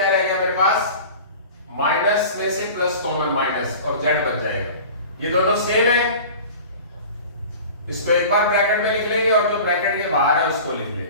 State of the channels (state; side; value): inverted; both; correlation -0.39